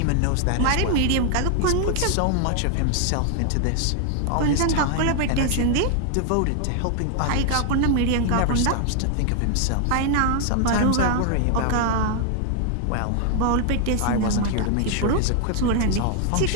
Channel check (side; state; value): both; different; correlation 0.00